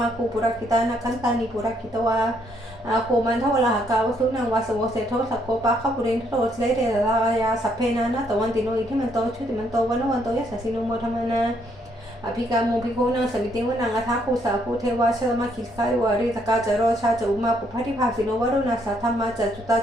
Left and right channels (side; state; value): both; normal; correlation 0.71